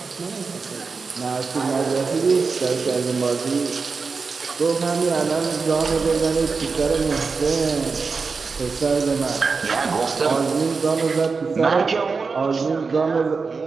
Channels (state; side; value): quieter; left; 4.7 dB